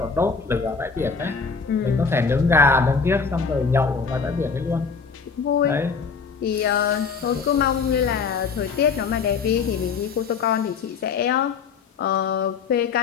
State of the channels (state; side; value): quieter; right; 5.4 dB